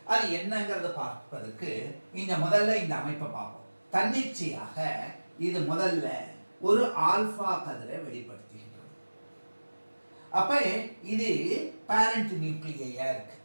அது என்னங்கிறத பார்ப்பதற்கு முதல்ல இந்த அமைப்பை பார்ப்போம். தன்னிச்சையாக இது முதல்ல ஒரு ஆல்பா கதிரை வெளிப்படுத்துகின்றது. அப்ப இது பேரண்ட் நியூக்ளியா இருக்கு.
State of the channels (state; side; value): inverted; both; correlation -1.00